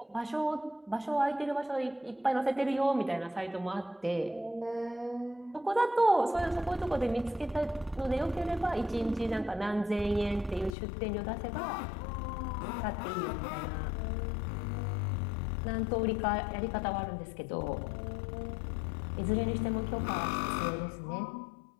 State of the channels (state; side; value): drops out; right; at 10.8 s